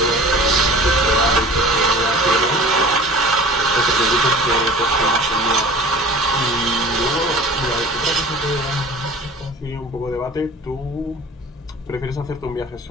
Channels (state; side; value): normal; both; correlation 0.43